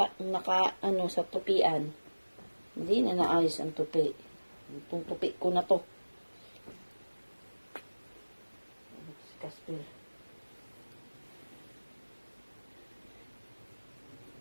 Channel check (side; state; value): both; inverted; correlation -1.00